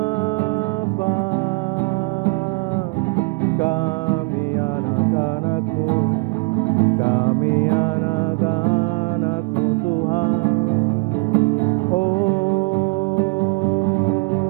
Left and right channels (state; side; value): quieter; left; 30.9 dB